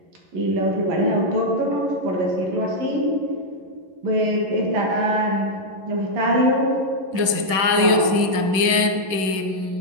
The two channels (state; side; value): late; left; 11 ms